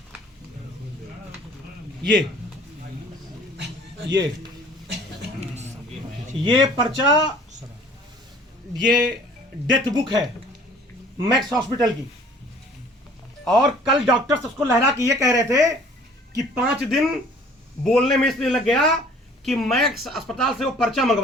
ये पर्चा, ये डेथ बुक है मैक्स हॉस्पिटल की। और कल डॉक्टर्स उसको लहरा के ये कह रहे थे कि 5 दिन बोलने में इसलिए लग गया कि मैक्स अस्पताल से वो पर्चा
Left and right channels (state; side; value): normal; both; correlation 0.52